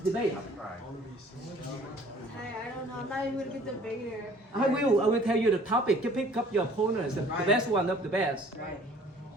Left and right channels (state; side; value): normal; both; correlation 0.53